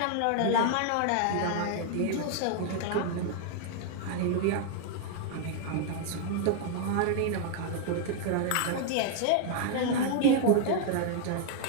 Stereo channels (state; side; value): different; both; correlation 0.00